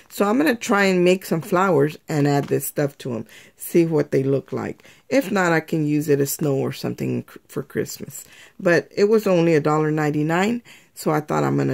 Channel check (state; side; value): identical; both; correlation 1.00